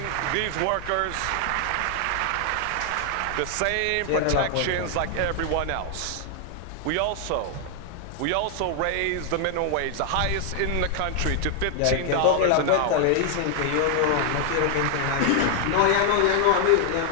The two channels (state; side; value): different; both; correlation 0.00